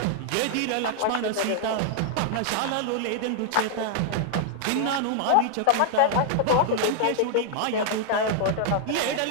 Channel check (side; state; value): both; different; correlation 0.00